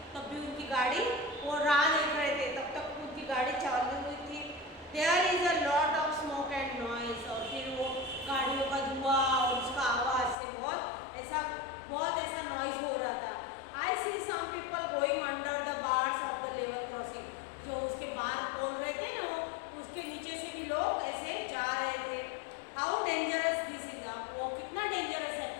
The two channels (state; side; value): drops out; right; at 10.4 s